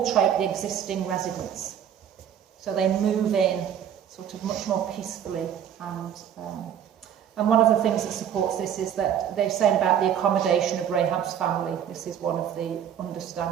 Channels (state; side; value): quieter; left; 9.2 dB